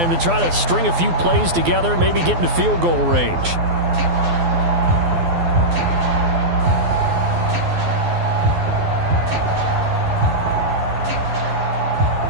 to try to string a few plays together, maybe get into field goal range.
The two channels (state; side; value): late; left; 12 ms